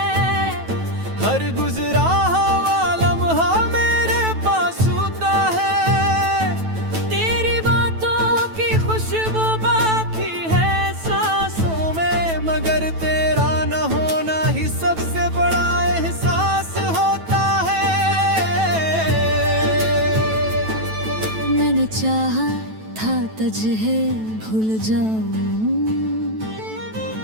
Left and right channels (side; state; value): left; late; 9.1 ms